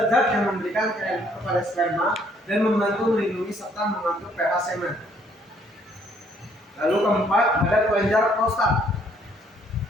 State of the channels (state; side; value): normal; both; correlation 0.65